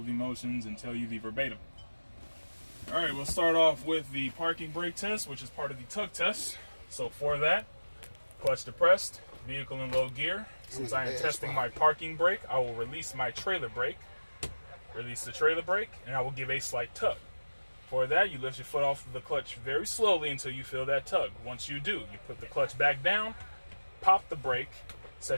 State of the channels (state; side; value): inverted; both; correlation -1.00